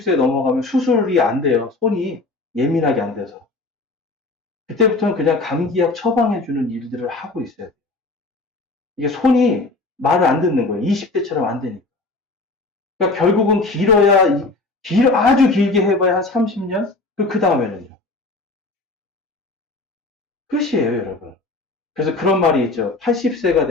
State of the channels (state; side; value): quieter; right; 3.3 dB